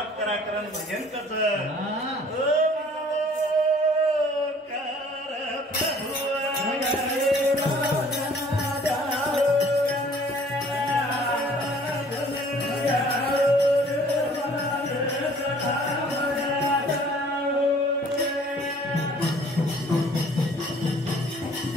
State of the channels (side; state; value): both; normal; correlation 0.54